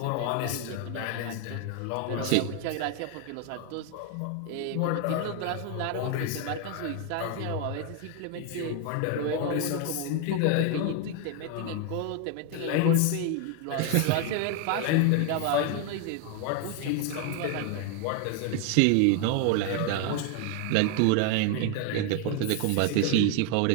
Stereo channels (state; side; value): different; both; correlation 0.01